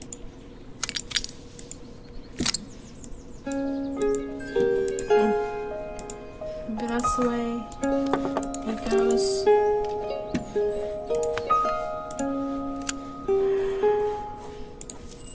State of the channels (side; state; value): both; identical; correlation 1.00